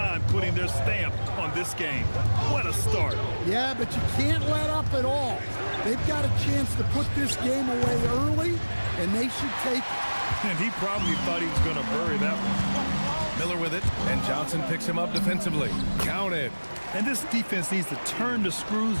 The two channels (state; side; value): inverted; both; correlation -1.00